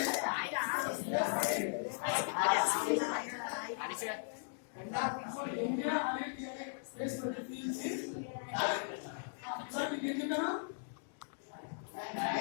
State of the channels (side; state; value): right; silent; digital silence